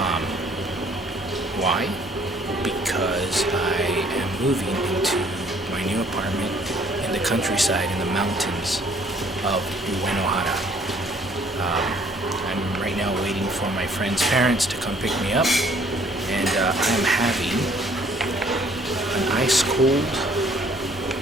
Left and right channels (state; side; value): normal; both; correlation 0.60